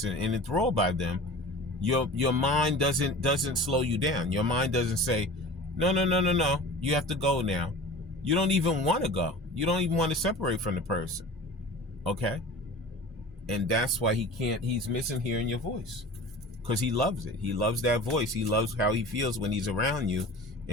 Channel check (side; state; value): both; normal; correlation 0.38